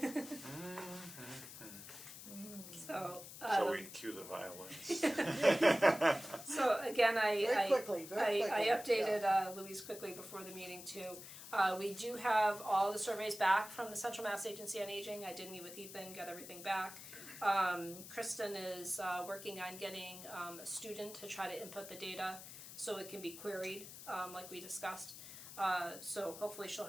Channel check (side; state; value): left; noise; hiss, 13 dB below the sound